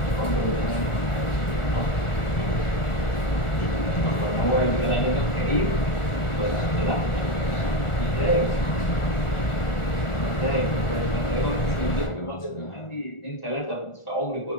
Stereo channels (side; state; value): right; late; 1.4 ms